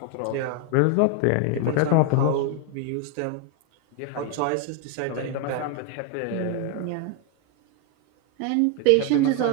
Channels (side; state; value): both; different; correlation 0.01